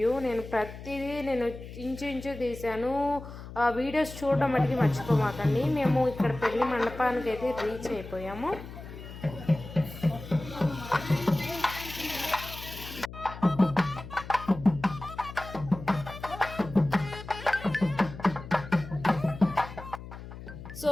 నేను ప్రతిదీ ఇంచు తీశాను. వీడియోస్ చూడడం మటుకి మర్చిపోమాకండి. మేము ఇక్కడ పెళ్లి మండపానికి అయితే రీచ్ అయిపోయాము. సో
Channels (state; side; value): noise; left; hum, 13 dB below the sound